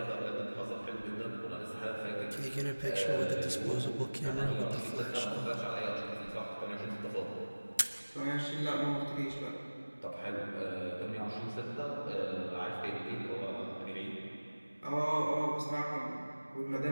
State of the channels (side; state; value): both; inverted; correlation -1.00